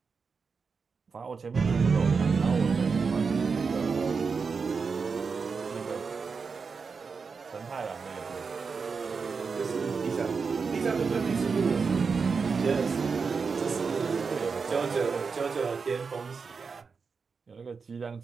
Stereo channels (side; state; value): left; quieter; 5.2 dB